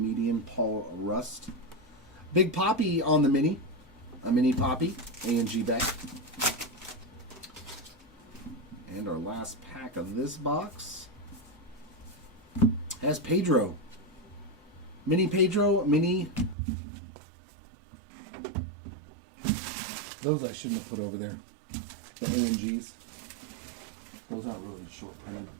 Paul Rust. Big Poppy on the mini. A mini Poppy. A&G back. And our last pack of this box has Pedro. Mini Pedro, mini. Those I shouldn't have put over there. The A&Gs. Those aren't really short printed.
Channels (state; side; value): drops out; left; at 16.6 s